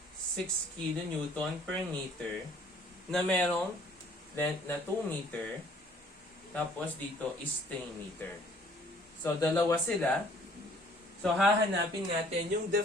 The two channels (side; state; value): both; normal; correlation 0.57